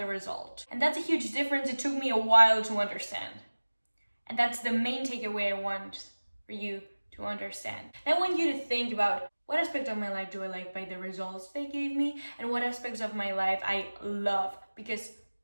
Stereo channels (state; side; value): inverted; both; correlation -1.00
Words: result. And that's a huge difference. It took me a while to understand. And that's the main takeaway I want for you to understand. I want you to think about, what aspect of my life do I like by the results they gave me, and what aspects of my life I love because